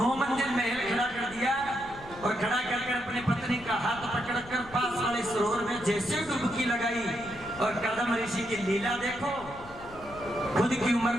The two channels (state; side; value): noise; left; rumble, 18 dB below the sound